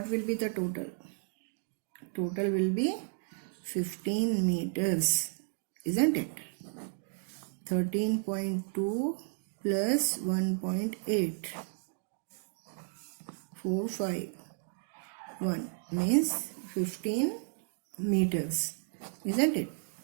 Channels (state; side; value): silent; left; 56 dB below the other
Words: will be the total? Total will be 15 meters, isn't it? 13.2 plus 1.8. 4, 5, 1 means 15 meters, isn't it?